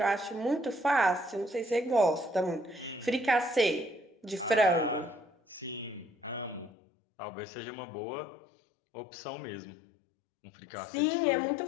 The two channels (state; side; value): drops out; right; at 6.7 s